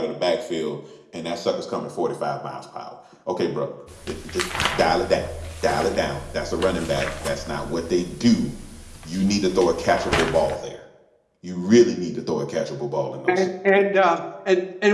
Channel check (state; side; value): identical; both; correlation 1.00